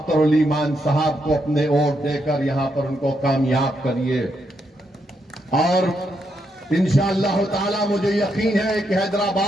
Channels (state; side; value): normal; both; correlation 0.80